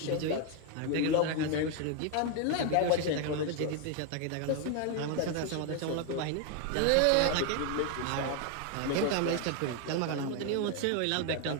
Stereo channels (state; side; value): different; both; correlation 0.01